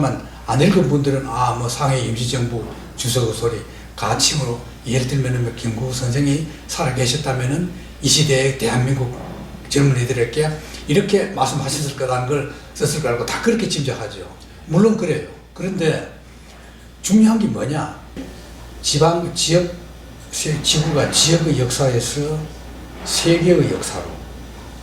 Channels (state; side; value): identical; both; correlation 1.00